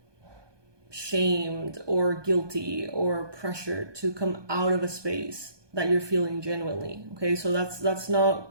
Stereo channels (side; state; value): left; late; 1.2 ms